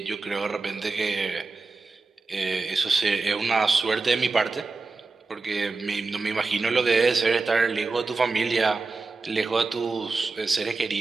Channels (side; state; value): left; quieter; 3.9 dB